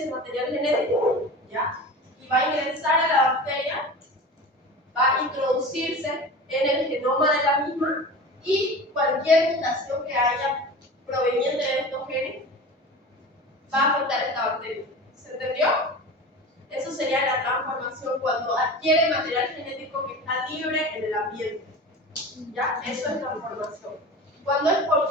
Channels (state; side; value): normal; both; correlation 0.34